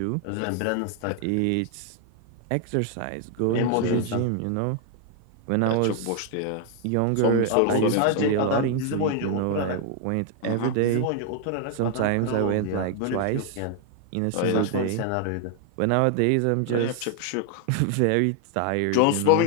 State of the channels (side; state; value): both; different; correlation 0.00